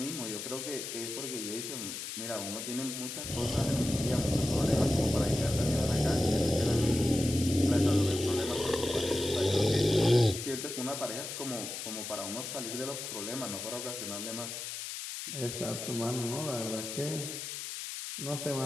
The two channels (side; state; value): left; noise; hiss, 7 dB below the sound